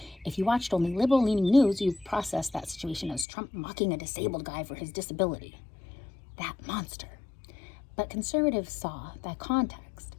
If you watched only liberal-leaning news, you'd process that situation as Trump mocking a disabled guy for his disability. That monster. But conservatives saw that context,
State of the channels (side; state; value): right; drops out; at 3.2 s